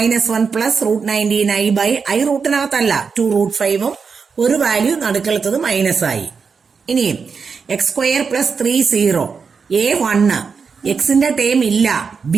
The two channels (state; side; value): quieter; left; 5.5 dB